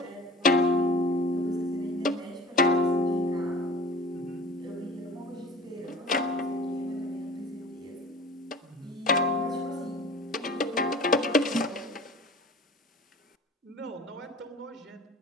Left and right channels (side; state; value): both; normal; correlation 0.41